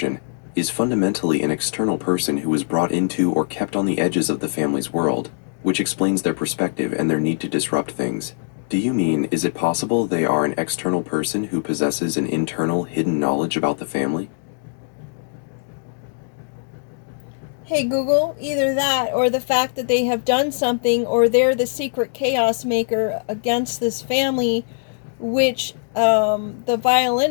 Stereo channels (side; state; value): right; silent; digital silence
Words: is fundamentally an external person who was brought into or kept on the edges of the family's world, which explains their perspective and their need to disrupt things. Do you mean, is it possible they are an external person who possesses an internal, hidden knowledge about the family? Hey Google, either that or the fact that they have done something or they're the secret chaos maker against this family, which the